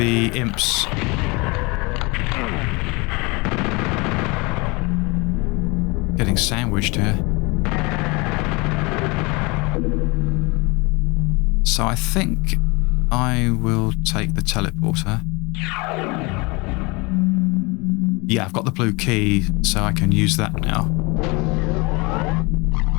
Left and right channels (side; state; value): right; quieter; 27.0 dB